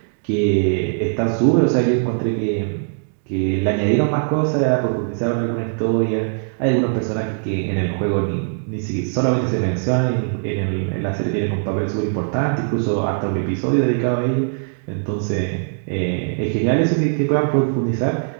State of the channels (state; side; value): silent; left; digital silence